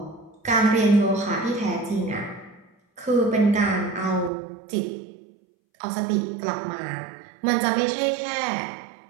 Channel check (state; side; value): drops out; left; at 4.3 s